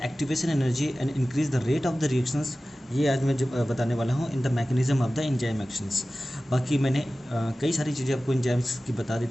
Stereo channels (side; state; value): both; normal; correlation 0.96